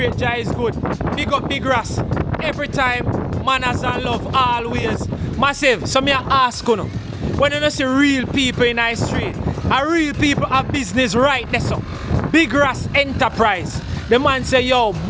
Jah is good. Big up Big Ras. Every time, manners and love, always. Massive. So me I ask you, when you don't see real people in the street, and real people have business right there, so Big Ras Enterprise. The man say, yo,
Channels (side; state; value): both; identical; correlation 1.00